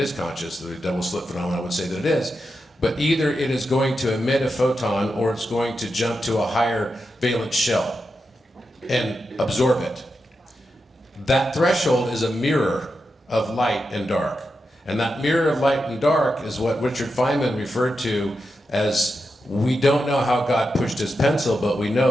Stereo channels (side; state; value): both; normal; correlation 0.88